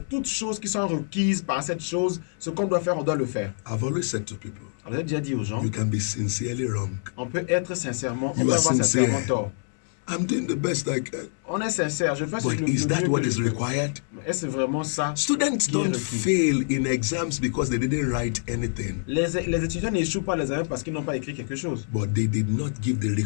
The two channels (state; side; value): silent; right; digital silence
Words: toutes choses qui sont requises par cette chose, ce qu'on doit faire, on doit le faire. I've always said to people, Alors, j'ai déjà dit aux gens, you can be sincerely wrong. on peut être sincèrement, on You peut are avoir sincere. sincèrement tort. I'm doing the best I can. On est sincère, je fais ce But que is le that mieux what que is je peux. required? Est-ce vraiment ça? Students qui est don't requis? fail in exams because they didn't write anything, Les étudiants n'échouent pas les examens parce qu'ils n'ont pas écrit quelque chose. but they did not give the